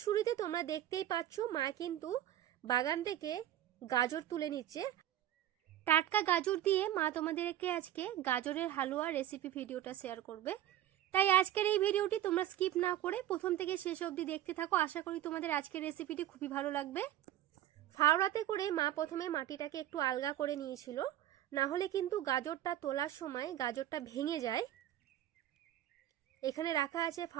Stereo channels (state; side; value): quieter; left; 12.5 dB